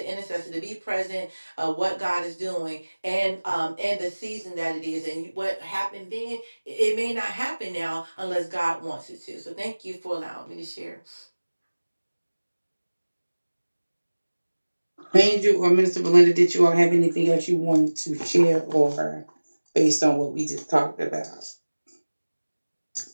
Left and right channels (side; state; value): both; inverted; correlation -1.00